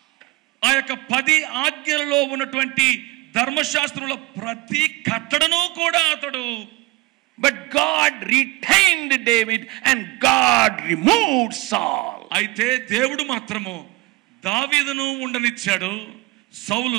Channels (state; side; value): quieter; left; 20.0 dB